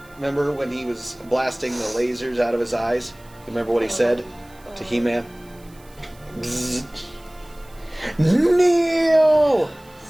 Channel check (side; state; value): right; noise; hiss, 27 dB below the sound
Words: Remember when he was blasting the lasers out of his eyes? You remember what he said to He-Man? Bzz. Neil!